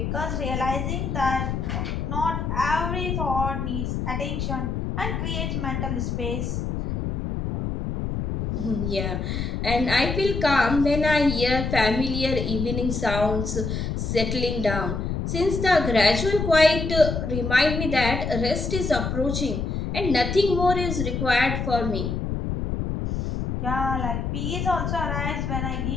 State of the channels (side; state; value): left; noise; rumble, 2 dB below the sound